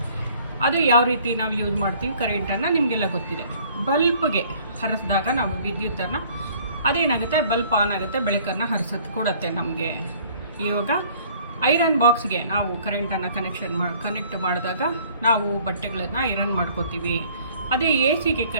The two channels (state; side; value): inverted; both; correlation -0.56